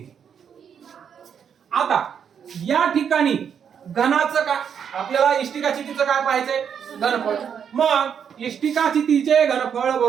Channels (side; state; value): left; quieter; 7.7 dB